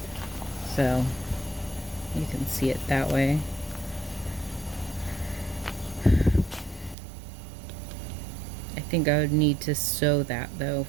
So you can see it that way. I think I would need to sew that though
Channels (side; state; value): left; drops out; at 7.0 s